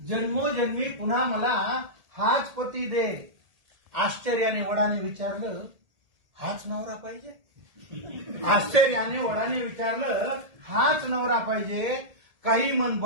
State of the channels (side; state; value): left; late; 1.7 ms